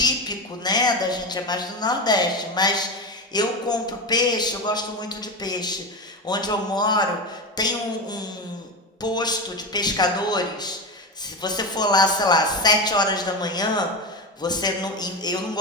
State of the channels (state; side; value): normal; both; correlation 0.19